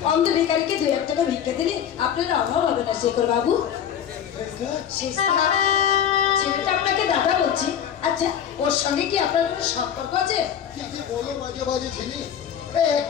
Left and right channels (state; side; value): quieter; right; 8.9 dB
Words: অন্ধ ভিখারিকে 2-1 টাকা ভিক্ষা দিলে আপনার অভাব হবে না শেখর বাবু। ছেলেটা আপনাকে দাদা বলছি। আচ্ছা, ওর সঙ্গে কি আপনার কোনো সম্পর্ক আছে? কি বলো মাঝে মাঝে ছিলি?